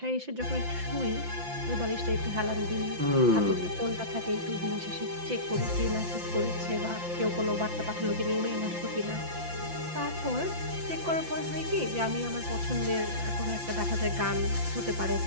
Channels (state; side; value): late; left; 5.8 ms